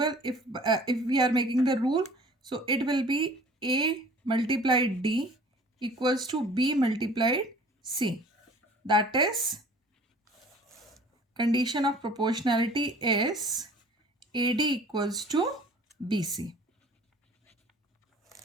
if we are making the rule, so it will be A multiplied D equals to B multiplied C. That is, condition of proportionality is AD equals to BC.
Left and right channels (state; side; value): normal; both; correlation 0.49